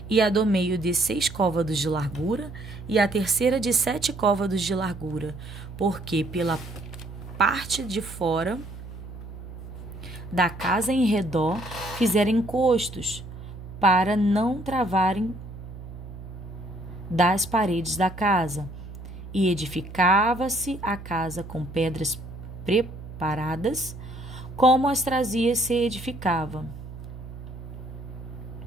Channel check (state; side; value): noise; right; hum, 13 dB below the sound